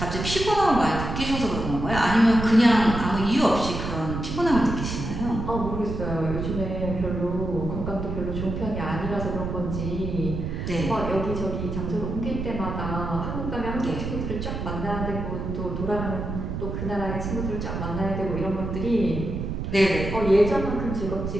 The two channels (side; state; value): right; noise; rumble, 4 dB below the sound